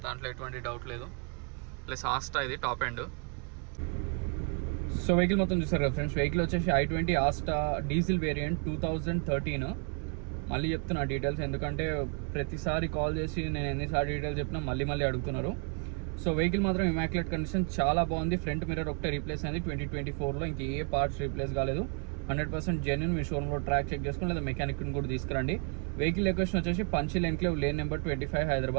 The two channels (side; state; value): left; quieter; 39.1 dB